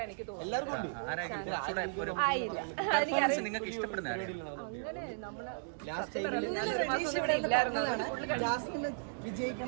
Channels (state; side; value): silent; left; digital silence